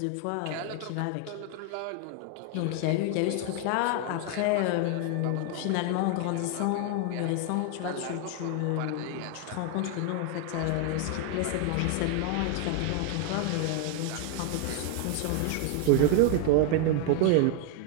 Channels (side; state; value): both; different; correlation 0.01